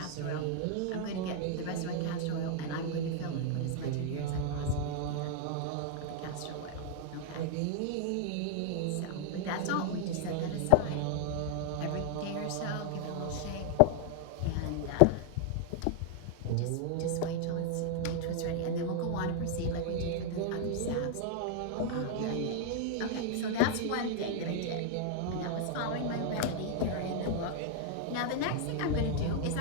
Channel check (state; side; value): different; both; correlation 0.00